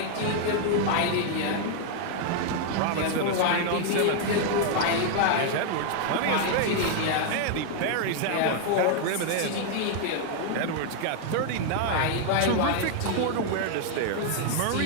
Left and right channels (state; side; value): different; both; correlation 0.00